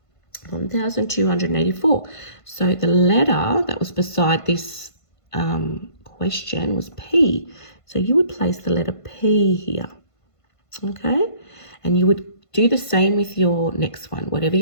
1,284. So the letter that was beside this question was P. So you would place the letter P here, okay? And you would do the same with your next one. Whatever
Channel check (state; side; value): late; right; 1.5 ms